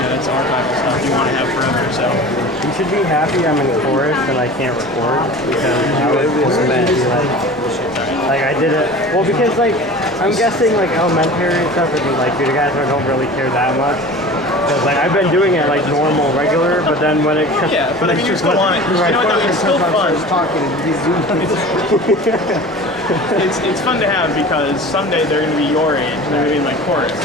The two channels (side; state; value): both; normal; correlation 0.38